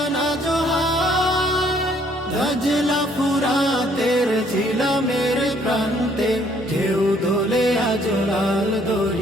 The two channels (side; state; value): both; normal; correlation 0.64